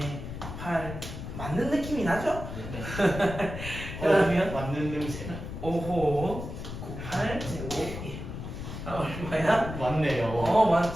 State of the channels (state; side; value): noise; left; rumble, 8 dB below the sound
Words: 8 맞는 느낌이 나죠? 그러면 맞는 냄새. 5호 98 제곱 1. 얼마야? 맞네요.